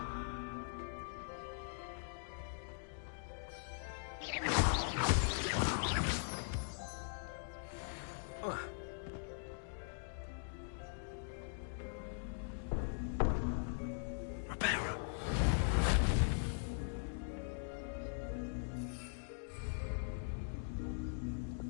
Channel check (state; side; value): silent; right; digital silence